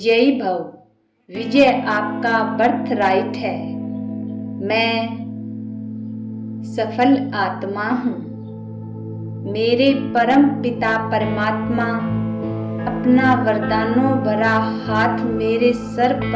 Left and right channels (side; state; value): both; identical; correlation 1.00